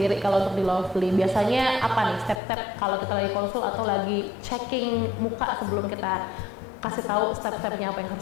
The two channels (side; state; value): right; drops out; at 2.4 s